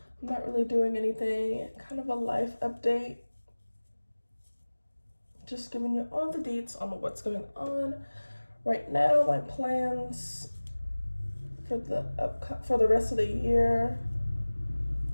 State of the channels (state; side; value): inverted; both; correlation -1.00